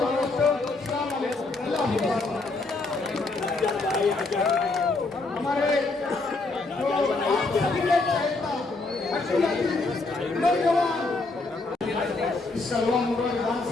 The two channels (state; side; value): quieter; right; 3.4 dB